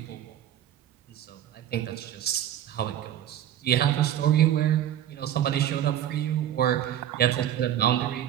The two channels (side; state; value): left; quieter; 11.1 dB